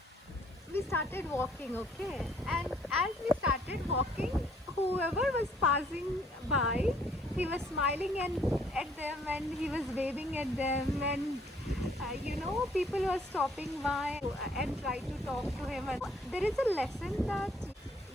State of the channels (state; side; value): normal; both; correlation 0.64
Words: we started walking, okay, and as we started walking, whoever was passing by, he was smiling and at them, and he was waving at them, and people were stopping by and try to talk to him. And there is a lesson that